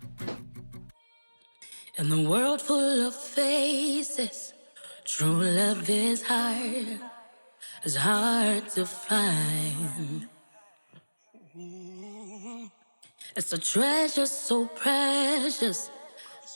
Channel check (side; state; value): both; inverted; correlation -1.00